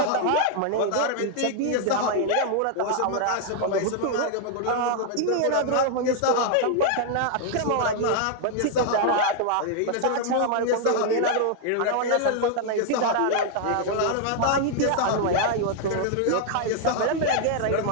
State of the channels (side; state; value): both; different; correlation 0.00